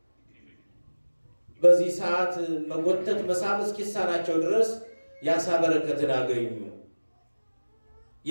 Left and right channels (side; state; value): both; inverted; correlation -1.00